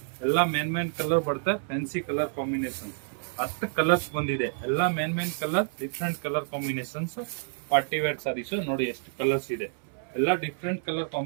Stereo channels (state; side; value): silent; left; 59 dB below the other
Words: ಎಲ್ಲ ಮೇನ್ ಕಲರ್ ಬರುತ್ತೆ. ಫ್ಯಾನ್ಸಿ ಕಲರ್ ಕಾಂಬಿನೇಷನ್ 10 ಕಲರ್ಸ್ ಬಂದಿದೆ. ಎಲ್ಲ main colour, different colour combinations. Party wear saris ನೋಡಿ, ಎಷ್ಟು ಕಲರ್ಸ್ ಇದೆ. ಎಲ್ಲ ಡಿಫ್ರೆಂಟ್ ಕಲರ್